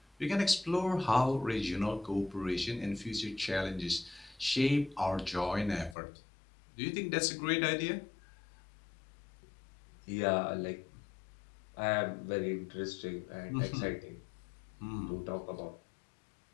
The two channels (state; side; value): drops out; right; at 6.0 s